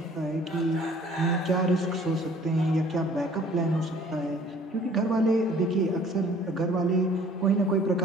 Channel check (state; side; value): normal; both; correlation 0.54